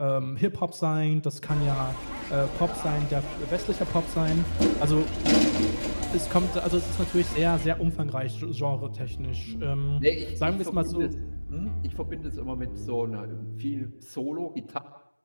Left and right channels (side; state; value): both; inverted; correlation -1.00